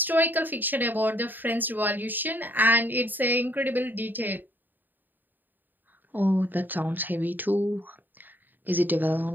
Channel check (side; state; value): left; late; 0.090 ms